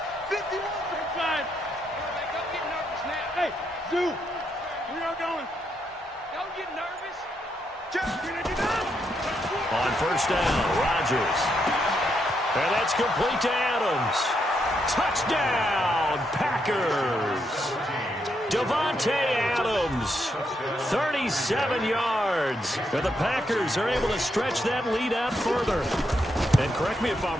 Hey, Zoo, we are going. Don't get nervous. On 1st down, Rodgers. And that's complete to Adams. Touchdown, Packers. Davante Adams, 37 yards. And the Packers are able to stretch that lead out further. And correct me if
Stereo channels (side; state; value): both; normal; correlation 0.79